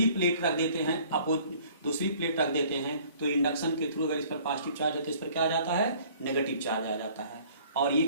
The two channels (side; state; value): both; inverted; correlation -0.54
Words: प्लेट रख देते हैं, दूसरी प्लेट रख देते हैं, तो इंडक्शन के थ्रू अगर इस पर पॉजिटिव चार्ज है तो इस पर क्या आ जाता है? नेगेटिव चार्ज आ जाता है, और ये